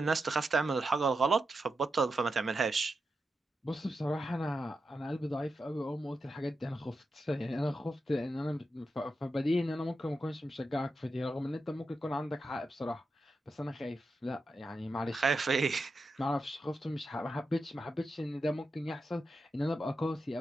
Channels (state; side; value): normal; both; correlation 0.88